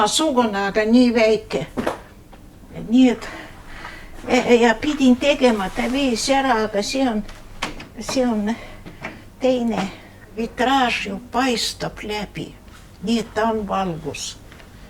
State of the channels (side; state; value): both; identical; correlation 1.00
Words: aga nii väike. Nii et ja pidin tegema, ta viis ära, aga see on teine vitraaž ju paistab läbi, nii et ta on valgus.